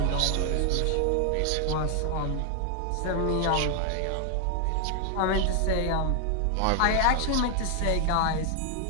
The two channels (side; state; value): both; different; correlation 0.00